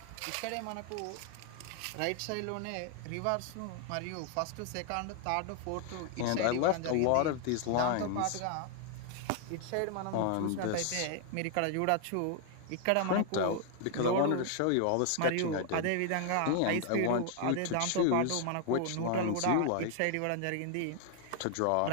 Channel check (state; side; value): different; both; correlation 0.00